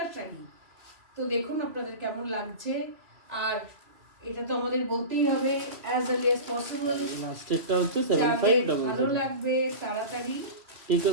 শাড়ি। তো দেখুন আপনাদের কেমন লাগছে। আর এটা তো আমাদের বলতেই হবে অ্যাজ আর্লি অ্যাজ পসিবল, লাস্টেরটা হচ্ছে 7500। ভালো লাগবে তাড়াতাড়ি Take a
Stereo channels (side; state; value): left; late; 2.7 ms